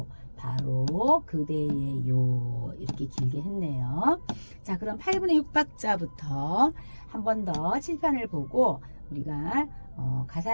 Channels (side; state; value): both; inverted; correlation -1.00